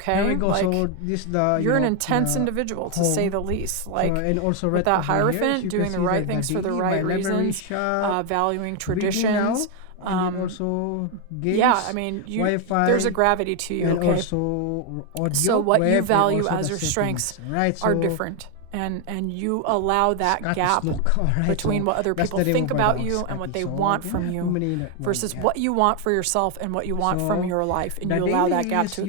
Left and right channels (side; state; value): both; different; correlation 0.01